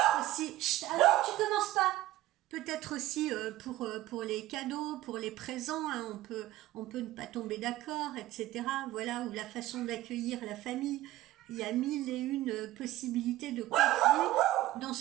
aussi... Chut, alors tu commences pas. Peut-être aussi pour les cadeaux, pour les présents, on peut ne pas tomber d'accord, etc. Voilà, ou la façon d'accueillir la famille. Il y a mille et une possibilités de conflit dans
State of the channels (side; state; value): left; quieter; 15.9 dB